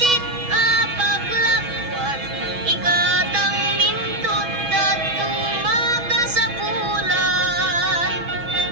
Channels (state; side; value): late; left; 6.1 ms